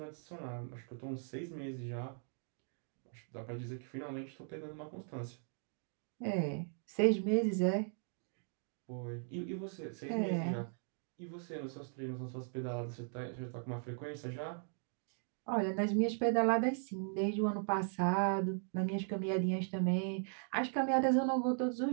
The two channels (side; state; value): left; silent; 52 dB below the other